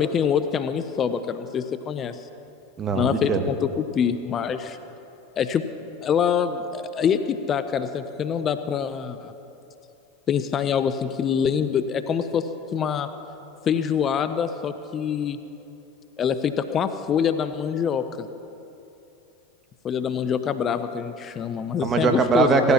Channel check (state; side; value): quieter; right; 4.3 dB